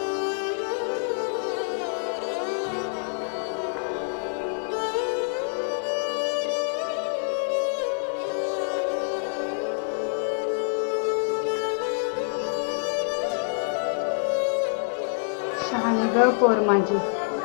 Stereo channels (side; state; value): right; silent; 58 dB below the other